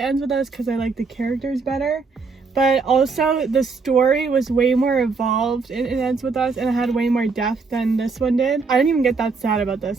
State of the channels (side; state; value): left; quieter; 4.5 dB